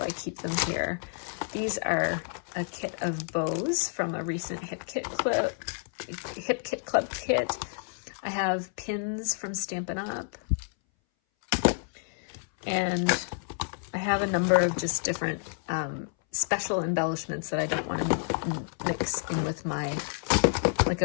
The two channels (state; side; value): silent; right; 58 dB below the other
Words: I keep them here. These are a kit of bows from a recent Hip Kit Club kit. I have pins from Stampin' Up. And I have a number of just different special embellishments that I don't want to mix in with my, like